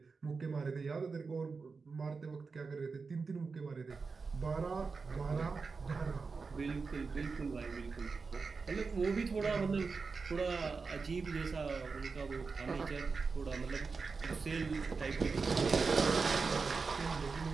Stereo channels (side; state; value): left; quieter; 4.7 dB